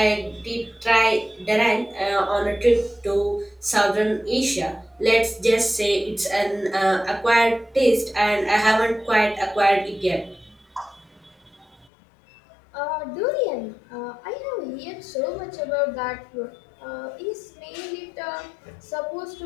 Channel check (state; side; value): drops out; right; at 11.9 s